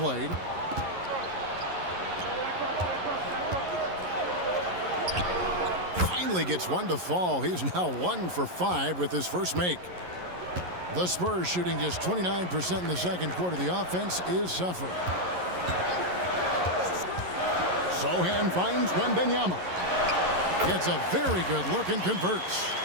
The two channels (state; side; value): late; left; 11 ms